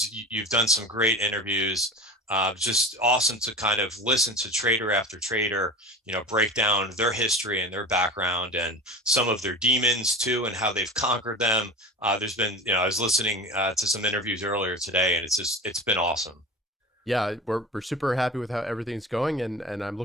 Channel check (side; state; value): both; normal; correlation 0.33